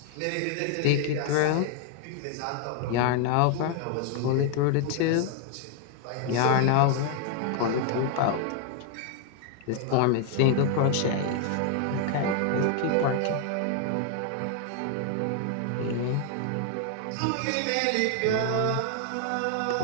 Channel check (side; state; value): both; different; correlation 0.00